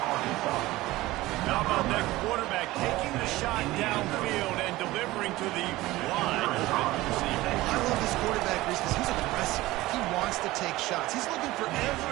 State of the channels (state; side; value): quieter; left; 18.2 dB